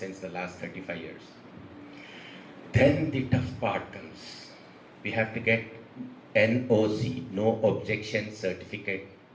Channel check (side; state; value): both; identical; correlation 1.00